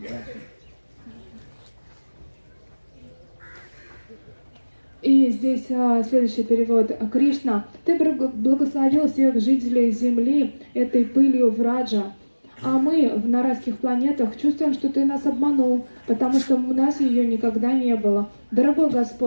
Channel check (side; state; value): both; inverted; correlation -1.00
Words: Yeah. И здесь следующий перевод. Кришна, ты благословил всех жителей Земли этой пылью Враджа, а мы на райских планетах чувствуем, что ты нас обманул, потому что у нас ее никогда не было. Дорогой